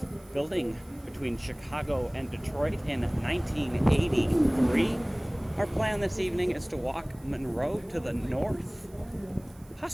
building between Chicago and Detroit in 1983. Our plan this evening is to walk Monroe to the north,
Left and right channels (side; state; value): right; noise; hiss, 28 dB below the sound